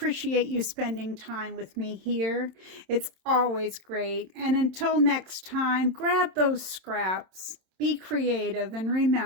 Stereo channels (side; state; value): left; late; 27 ms